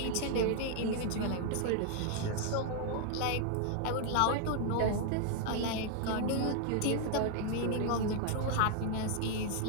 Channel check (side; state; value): both; different; correlation 0.00